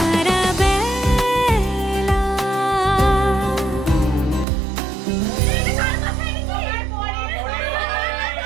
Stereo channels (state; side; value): drops out; left; at 4.5 s